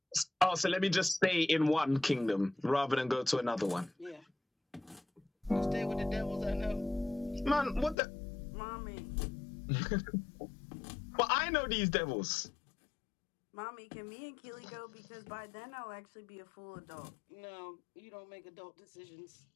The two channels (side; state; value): right; drops out; at 8.0 s